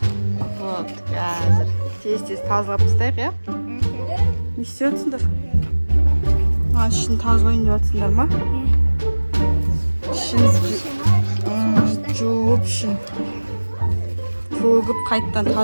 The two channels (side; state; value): both; inverted; correlation -1.00